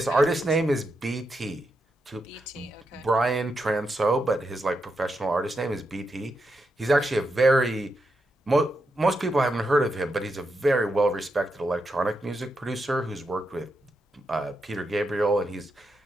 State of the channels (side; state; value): both; normal; correlation 0.84